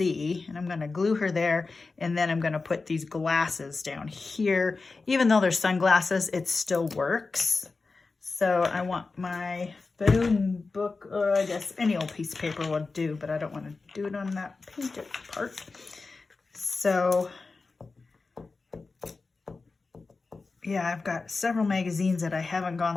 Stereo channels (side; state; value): right; quieter; 4.0 dB